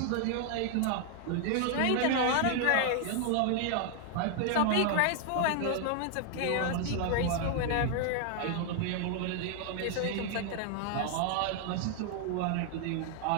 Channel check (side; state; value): both; different; correlation 0.00